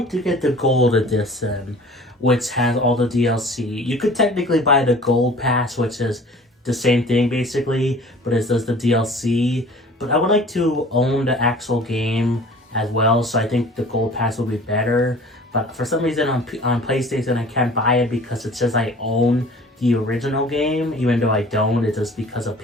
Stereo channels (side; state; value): both; normal; correlation 0.46